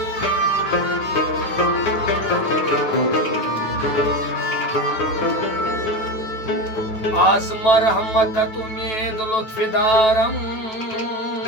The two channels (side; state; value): right; late; 9.2 ms